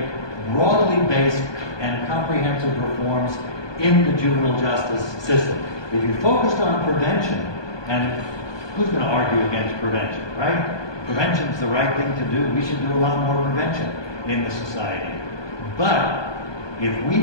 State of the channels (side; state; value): right; late; 1.2 ms